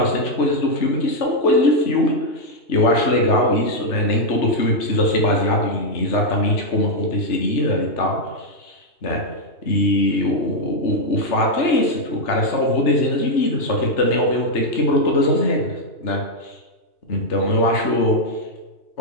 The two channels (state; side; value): late; right; 2.9 ms